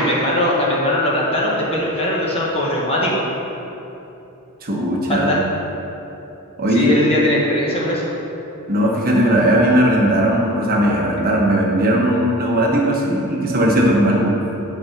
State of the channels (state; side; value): normal; both; correlation 0.38